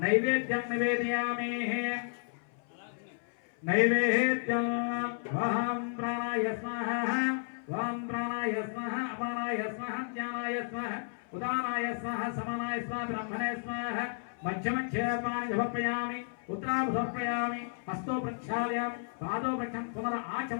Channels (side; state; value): right; silent; 56 dB below the other